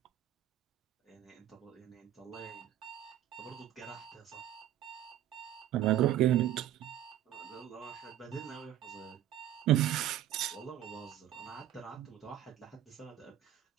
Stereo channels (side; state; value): left; quieter; 12.1 dB